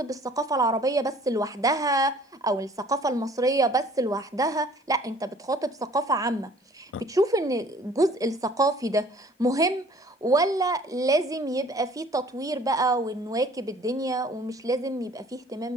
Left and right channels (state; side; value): normal; both; correlation 0.53